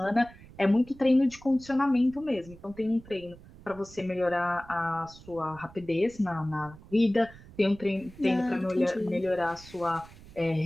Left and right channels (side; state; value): right; noise; rumble, 21 dB below the sound